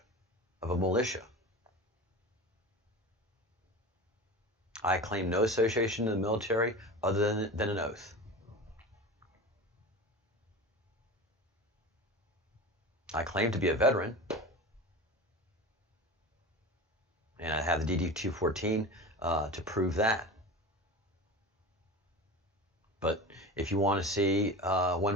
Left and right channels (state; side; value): normal; both; correlation 0.30